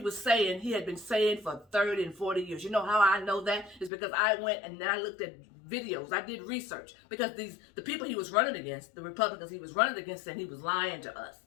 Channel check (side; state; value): right; drops out; at 3.9 s